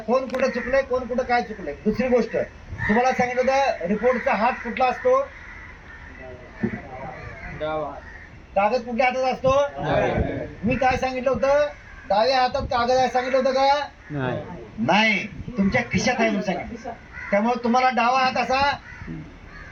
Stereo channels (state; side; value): identical; both; correlation 1.00